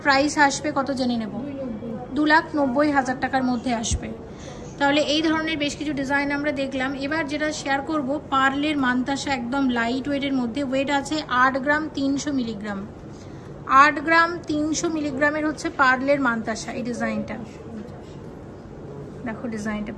প্রাইস আসবে কত জেনে নেব? 2,90,000 টাকার মধ্যে আসবে। তাহলে এই ধরনের বেশ কিছু ডিজাইন আমরা দেখলাম। এবার যেটা শেয়ার করব পার্লের মানতাসা, একদম লাইট ওয়েটের মধ্যে, ওয়েট আছে 8 গ্রাম 300 মিলিগ্রাম, 8 গ্রাম 300 মিলিগ্রামের হচ্ছে পার্লের মানতাসা। এই ডিজাইনটা দেখো, ডিজাইনটা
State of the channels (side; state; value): both; identical; correlation 1.00